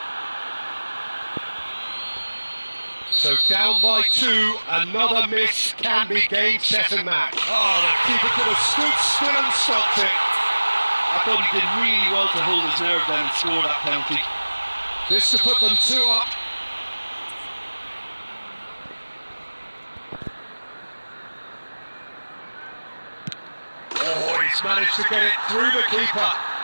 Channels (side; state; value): both; inverted; correlation -1.00